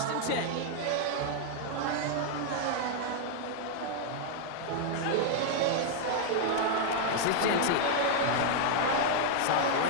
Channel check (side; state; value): both; different; correlation 0.00